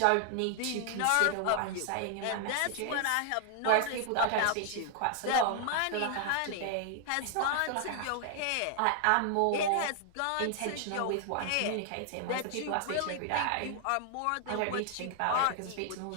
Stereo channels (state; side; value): different; both; correlation 0.00